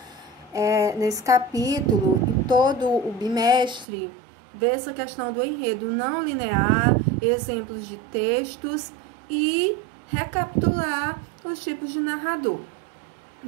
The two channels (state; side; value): drops out; left; at 3.9 s